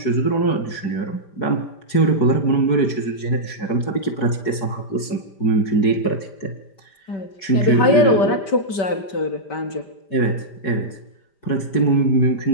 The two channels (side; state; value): right; late; 4.7 ms